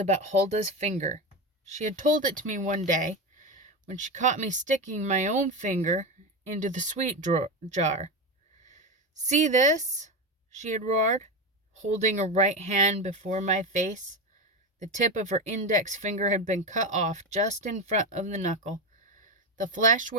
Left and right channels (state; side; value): normal; both; correlation 0.16